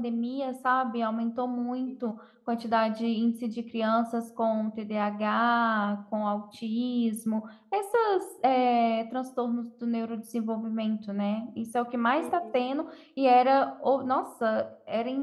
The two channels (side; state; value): both; identical; correlation 1.00